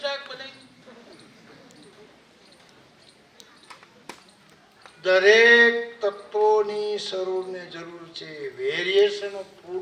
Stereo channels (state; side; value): identical; both; correlation 1.00